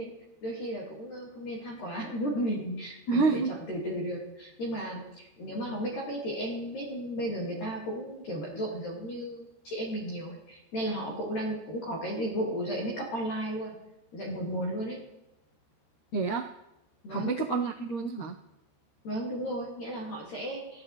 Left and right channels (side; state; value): right; late; 13 ms